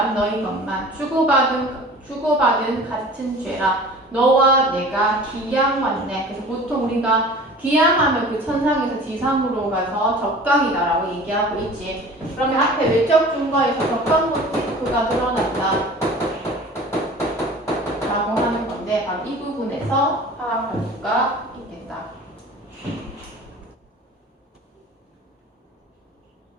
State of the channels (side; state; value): both; normal; correlation 0.42